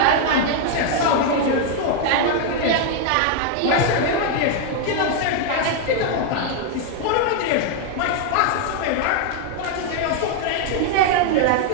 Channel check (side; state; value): both; different; correlation 0.00